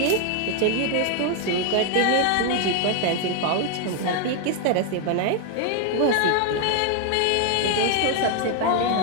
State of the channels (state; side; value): different; both; correlation 0.01